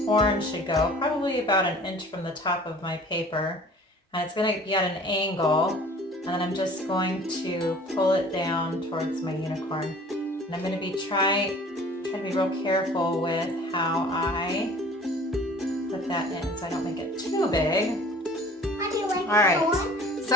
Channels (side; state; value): both; normal; correlation 0.48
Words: horn should go, probably about an inch from the top of my paper. And it's going to be at an angle, and then I'm just going to pull it down towards my unicorn. And I'm going to be trying to be real careful with how I put that in so I don't make it too big. How do you like All right,